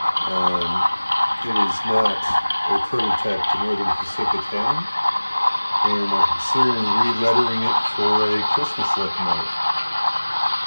It is not a prototype to Northern Pacific Town, and I'm considering re-lettering it for a Christmas locomotive.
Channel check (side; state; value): both; inverted; correlation -1.00